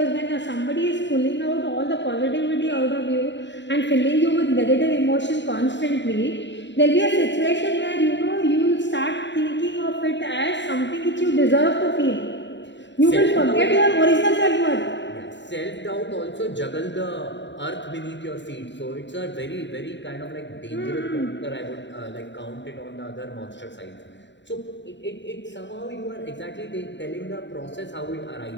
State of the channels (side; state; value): right; late; 0.52 ms